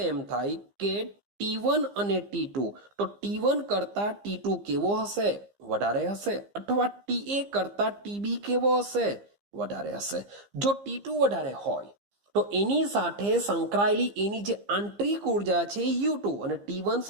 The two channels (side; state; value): left; late; 15 ms